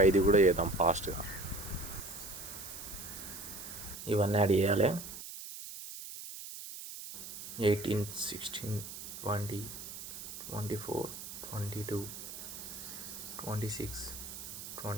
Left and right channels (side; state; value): right; noise; hiss, 10 dB below the sound